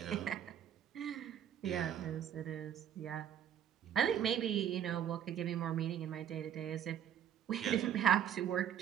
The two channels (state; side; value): quieter; left; 9.7 dB